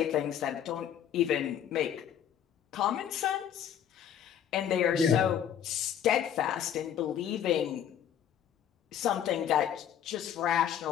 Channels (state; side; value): quieter; right; 9.5 dB